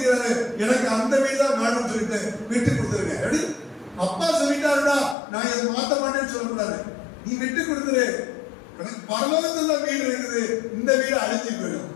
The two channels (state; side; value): drops out; right; at 5.2 s